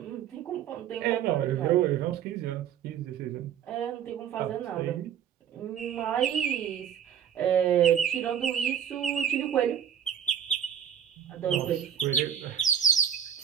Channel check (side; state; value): left; quieter; 9.1 dB